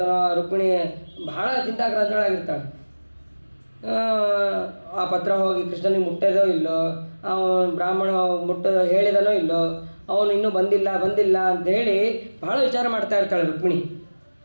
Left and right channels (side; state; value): both; inverted; correlation -1.00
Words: ರುಕ್ಮಿಣಿ ಭಾಳ ಚಿಂತಾಕ್ರಾಂತಳಾಗಿರ್ತಾಳೆ. ಆ ಪತ್ರ ಹೋಗಿ ಕೃಷ್ಣನಿಗೆ ಮುಟ್ಟೋದೋ ಇಲ್ಲೋ, ಅವನು ಬ್ರಾಹ್ಮಣ ಹೇಳಿದನೋ ಇಲ್ಲೋ, ಅವನು ಇನ್ನೂ ಬಂದಿಲ್ಲ ಅಂತ ಹೇಳಿ ಭಾಳ ವಿಚಾರ ಮಾಡ್ತಾ ಇರ್ತಾಳೆ ರುಕ್ಮಿಣಿ.